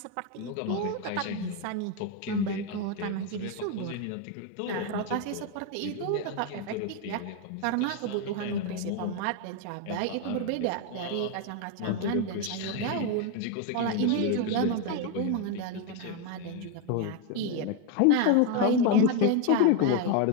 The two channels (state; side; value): different; both; correlation 0.02